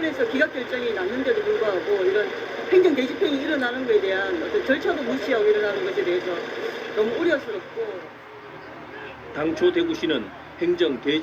기각 결정이 났는데도 불구하고 이런 행정 대집행이 일어나는 것에 대한 어떤 절차도 무시하고 일어나는 것에 대해서 너무 우려스럽고 당초 대구시는 행정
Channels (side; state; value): both; identical; correlation 1.00